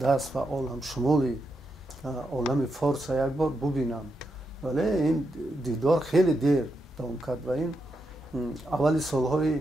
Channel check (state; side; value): normal; both; correlation 0.84